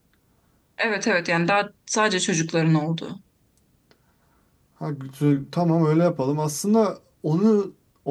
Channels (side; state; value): both; identical; correlation 1.00